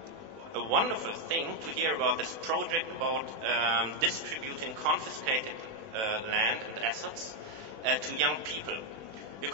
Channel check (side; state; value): left; late; 20 ms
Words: a wonderful thing to hear about this project about distributing confiscated land and assets to young people.